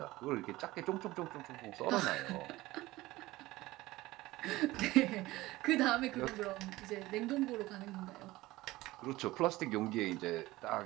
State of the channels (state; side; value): quieter; left; 18.5 dB